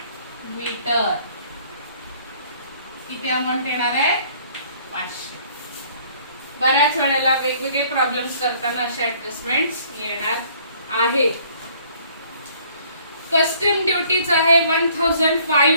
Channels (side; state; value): both; inverted; correlation -0.59